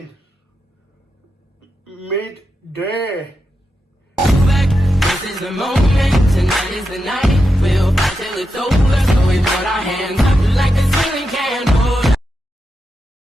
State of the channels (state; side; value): normal; both; correlation 0.87